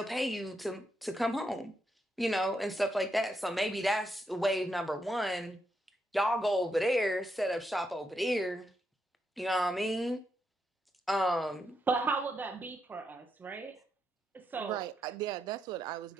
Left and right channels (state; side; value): normal; both; correlation 0.81